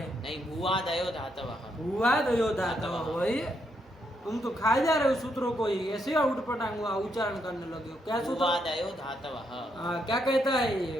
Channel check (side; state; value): both; normal; correlation 0.77